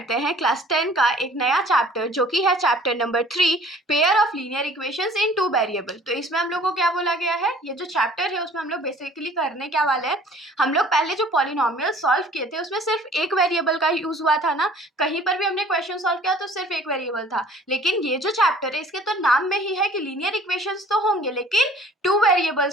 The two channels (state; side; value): normal; both; correlation 0.52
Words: हैं क्लास 10 का एक नया चैप्टर जो कि है chapter number 3 pair of linear equations in two variable. तो इसमें हम लोग को क्या बोला गया है, ये जो चैप्टर है उसमें हम लोग बेसिकली करने क्या वाले हैं। हम लोग पहले जो पॉलिनोमियल सॉल्व किए थे उसमें सिर्फ एक वेरिएबल का यूज हुआ था ना, कहीं पर भी हमने क्वेश्चन सॉल्व किया तो सिर्फ एक वेरिएबल था। लेकिन ये जो चैप्टर है इसके तो नाम में ही है कि लीनियर इक्वेशंस तो होंगे लेकिन टू